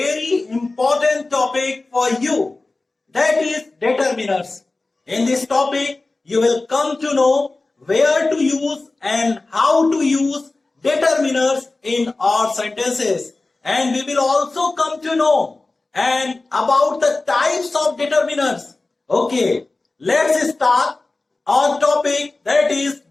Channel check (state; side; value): quieter; right; 3.3 dB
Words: important topic for you. That is determiners. In this topic, you will come to know where to use and how to use determiners in our sentences. And we will also come to know and about the types of determiners. Okay, let's start our topic, that is